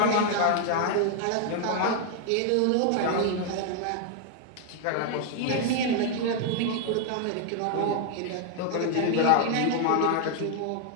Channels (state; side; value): different; both; correlation 0.00